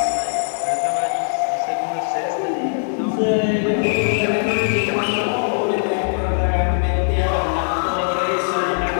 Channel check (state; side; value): silent; right; 66 dB below the other